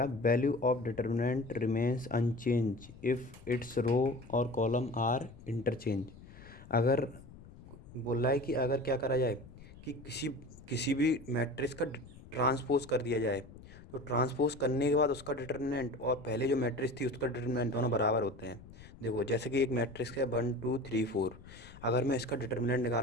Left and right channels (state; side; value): noise; left; rumble, 19 dB below the sound